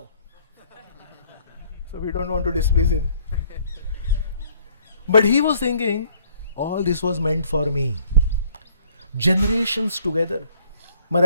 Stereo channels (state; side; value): inverted; both; correlation -0.61